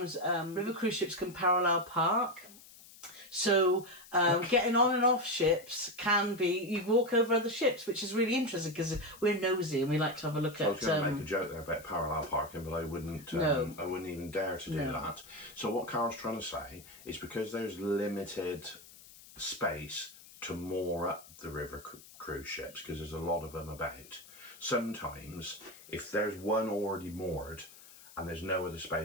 river cruise ships can parallel park. So getting on and off ships can be, you walk over other ships, which is really interesting because we're nosy and we like to have a look at... I was going to make a joke there about parallel parking, but I wouldn't even dare to do that. So what Carole's trying to say is because there's limited space to moor up the river cruise ships, because there's a lot of them about, sometimes if there's one already moored and there's no other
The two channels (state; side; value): noise; left; hiss, 20 dB below the sound